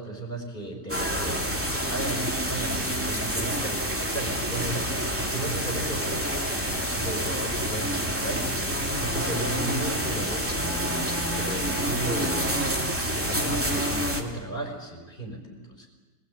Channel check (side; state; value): both; normal; correlation 0.06